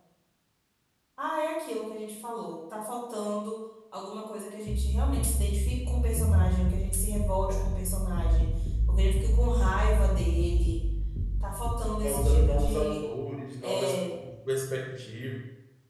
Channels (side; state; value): both; identical; correlation 1.00